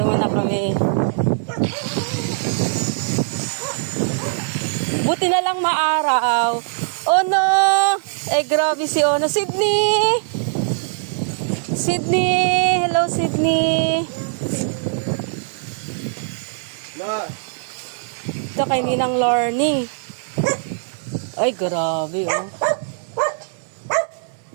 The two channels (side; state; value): left; silent; digital silence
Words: muna kami. Buti na lang maaraw. Oh no! Eh, grabe si Ono. Sydney! Sydney! Hello, Sydney! Ito kay Ninang Learning. Ay, grabe oh.